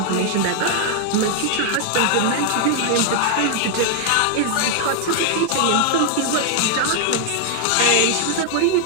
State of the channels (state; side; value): different; both; correlation 0.00